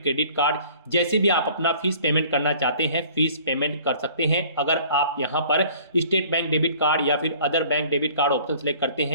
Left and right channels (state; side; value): inverted; both; correlation -0.51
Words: कार्ड, जैसे भी आप अपना फीस पेमेंट करना चाहते हैं फीस पेमेंट कर सकते हैं। अगर आप यहाँ पर स्टेट बैंक डेबिट कार्ड या फिर other bank debit card option select करते